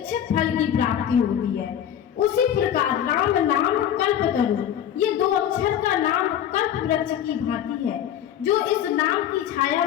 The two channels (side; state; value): right; quieter; 10.1 dB